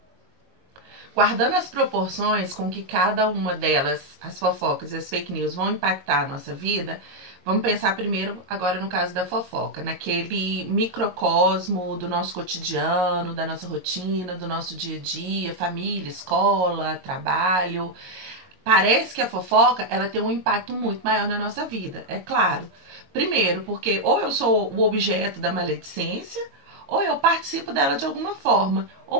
Guardando as proporções com que cada uma delas, as fofocas e as fake news, vão impactar a nossa vida, vamos pensar primeiro, agora no caso da fofoca, naquele microcosmo do nosso cotidiano, da nossa rotina, do nosso dia a dia, família, escola, trabalho. Parece que a fofoca, ela tem um impacto muito maior na nossa vida, é claro. Primeiro, porque ou eu sou o objeto da maledicência, ou eu participo dela de alguma forma,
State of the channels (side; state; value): left; late; 22 ms